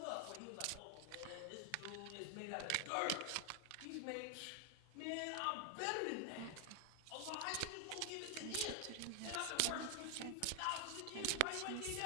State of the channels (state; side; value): different; both; correlation 0.00